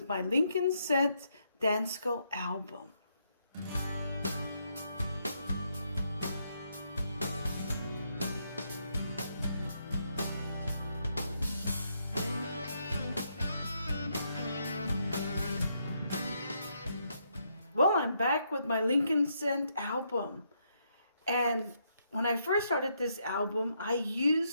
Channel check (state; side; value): inverted; both; correlation -0.77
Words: my Lincoln Scent Dansco album. Well, I'm back with my Lincoln Scent album. And when I first started this album, I